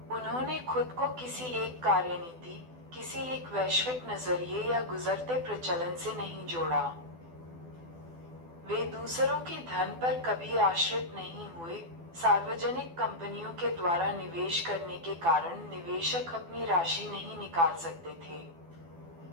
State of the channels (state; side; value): late; left; 12 ms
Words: उन्होंने खुद को किसी एक कार्यनीति, किसी एक वैश्विक नजरिए या गुजरते प्रचलन से नहीं जोड़ा। वे दूसरों के धन पर कभी आश्रित नहीं हुए। सार्वजनिक कंपनियों के द्वारा निवेश करने के कारण निवेशक अपनी राशि नहीं निकाल सकते थे।